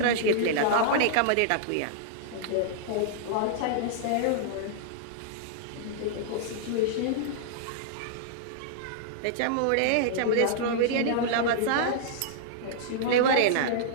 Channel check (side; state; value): both; different; correlation -0.01